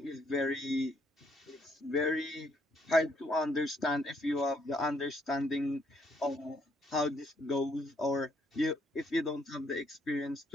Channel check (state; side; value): normal; both; correlation 0.70